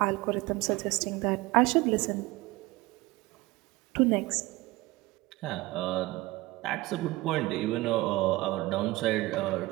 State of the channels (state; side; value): quieter; left; 20.1 dB